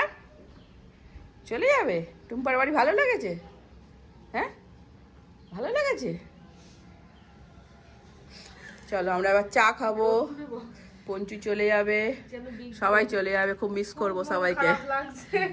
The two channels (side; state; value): both; identical; correlation 1.00